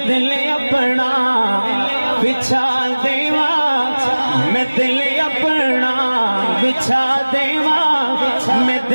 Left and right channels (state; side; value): inverted; both; correlation -1.00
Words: دل اپنا، بچھا دیوا میں دل اپنا، بچھا دیوا میں